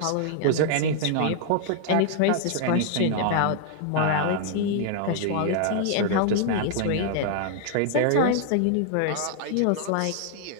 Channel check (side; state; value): both; different; correlation 0.00